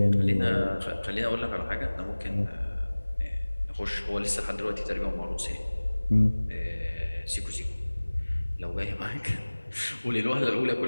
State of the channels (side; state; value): both; inverted; correlation -1.00